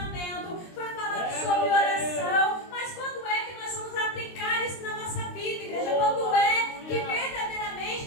foi falado sobre oração, mas quando é que nós vamos aplicar isso na nossa vida, igreja? Quando é que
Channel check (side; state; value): right; late; 23 ms